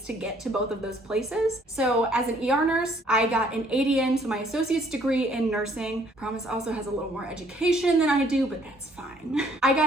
to get to both of those places. So as an ER nurse, I got an ADN, so my associate's degree in nursing. Promise also has a little more education than I do, but that's fine. I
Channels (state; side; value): normal; both; correlation 0.62